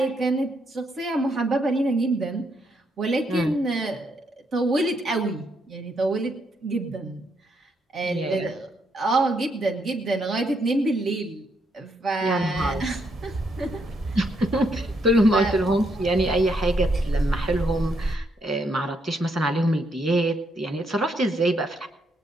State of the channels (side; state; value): both; normal; correlation 0.76